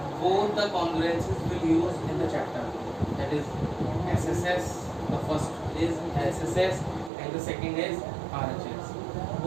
both the congruencies will use in the chapter, that is SSS. The first is SSS and the second is RHS.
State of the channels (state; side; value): drops out; left; at 7.1 s